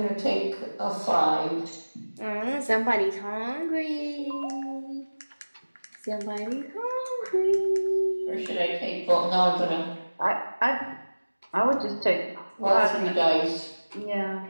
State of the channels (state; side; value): inverted; both; correlation -1.00